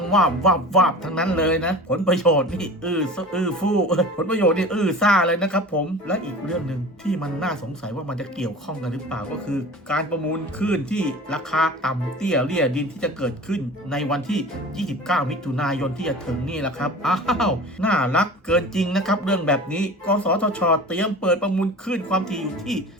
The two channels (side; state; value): both; normal; correlation 0.38